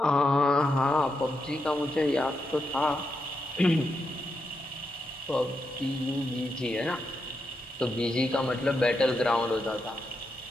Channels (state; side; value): normal; both; correlation 0.84